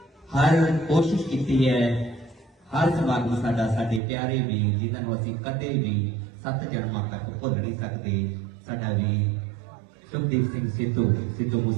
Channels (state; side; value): drops out; left; at 4.0 s